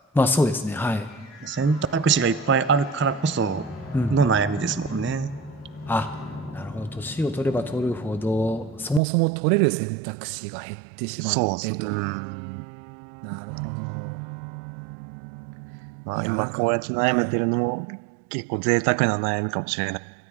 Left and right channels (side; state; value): left; drops out; at 9.0 s